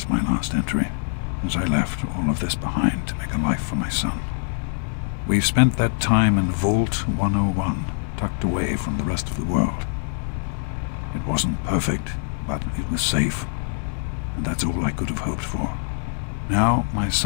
my last entry, since I left all of this behind to make a life for my son. We've spent that time in Vault 101, tucked away from the rest of the world. It wasn't perfect, but it was safe, and that's all I could have hoped for. Now my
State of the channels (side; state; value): right; silent; digital silence